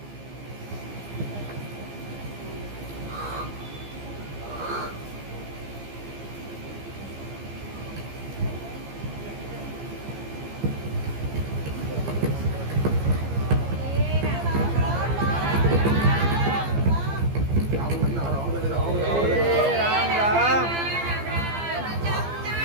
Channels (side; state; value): left; late; 15 ms